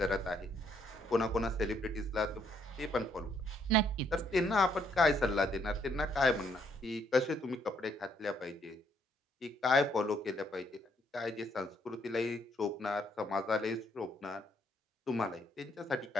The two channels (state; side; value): normal; both; correlation 0.70